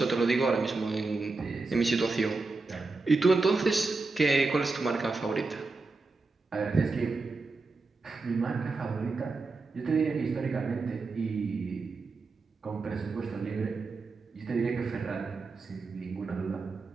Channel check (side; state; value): left; quieter; 3.9 dB